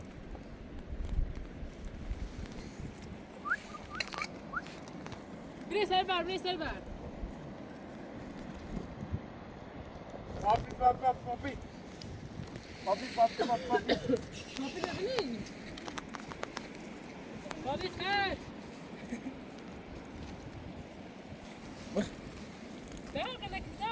بری سر بر بری سر بر پاپی پاپی پاپی نبینی پاپی خیر داغ لك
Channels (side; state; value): both; identical; correlation 1.00